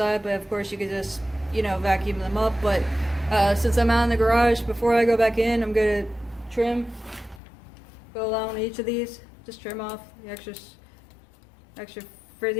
but of course you could just vacuum them up. But since I'm out in the garage, before I go back in, I'm going to go along each of these, just trim off the extra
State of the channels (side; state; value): right; drops out; at 7.4 s